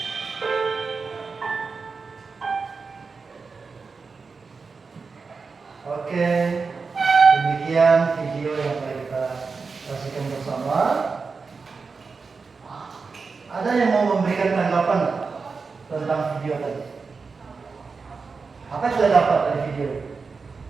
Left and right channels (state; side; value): quieter; left; 4.7 dB